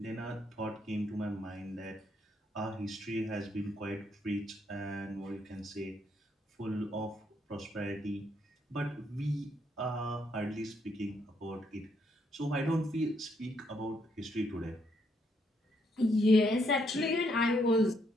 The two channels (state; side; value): normal; both; correlation 0.74